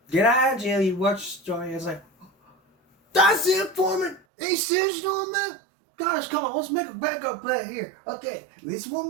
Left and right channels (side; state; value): left; drops out; at 4.2 s